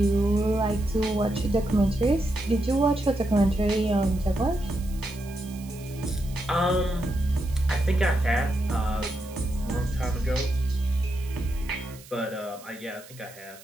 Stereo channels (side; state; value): right; noise; hiss, 21 dB below the sound